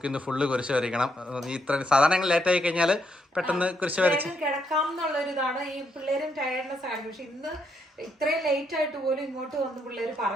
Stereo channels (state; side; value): normal; both; correlation 0.76